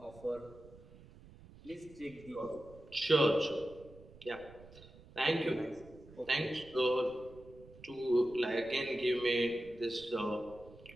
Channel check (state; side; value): noise; right; rumble, 21 dB below the sound